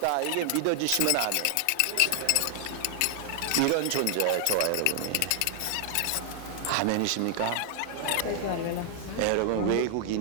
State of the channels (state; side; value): different; both; correlation 0.00